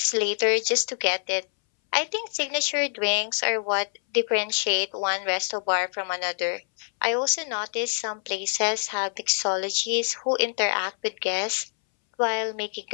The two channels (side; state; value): right; silent; 61 dB below the other